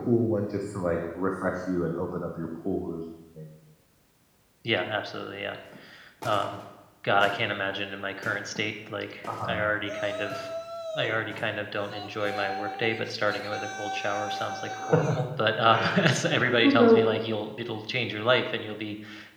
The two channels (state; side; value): identical; both; correlation 1.00